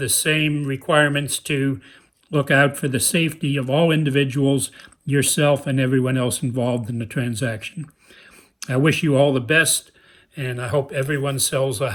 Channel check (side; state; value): both; identical; correlation 1.00